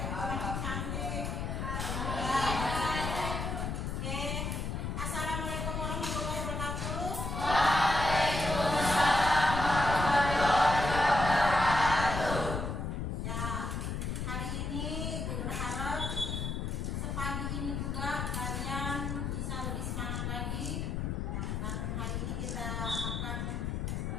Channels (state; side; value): noise; left; rumble, 2 dB below the sound